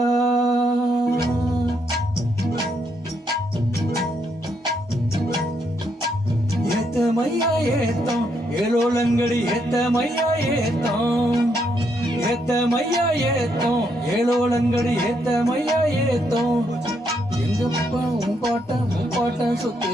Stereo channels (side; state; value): both; normal; correlation 0.76